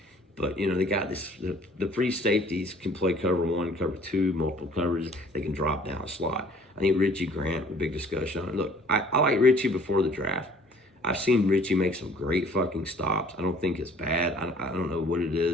But you know, they got this. The free safeties can play cover one, cover two, multiple coverages. They can drop down a slot. I think Richie Grant, a big discussion on it. Look, I like Richie before the draft. I've seen Richie make some great fucking stops. I don't think it's bad. I don't know what it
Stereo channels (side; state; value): both; normal; correlation 0.55